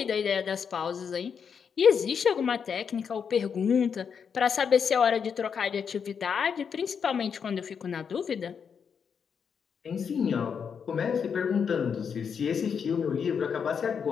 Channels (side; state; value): right; quieter; 6.7 dB